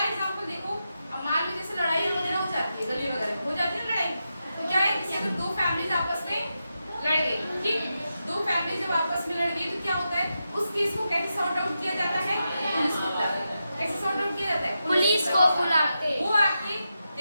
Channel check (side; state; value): both; inverted; correlation -0.88